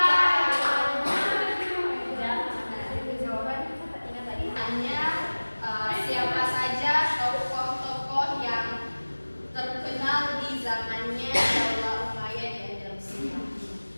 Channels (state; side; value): inverted; both; correlation -1.00